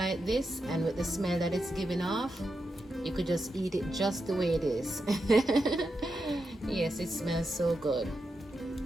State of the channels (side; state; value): both; normal; correlation 0.87